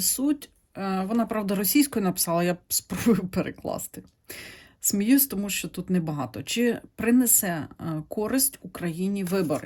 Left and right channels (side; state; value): both; identical; correlation 1.00